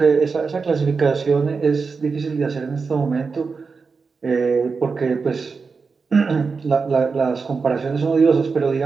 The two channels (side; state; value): left; quieter; 4.8 dB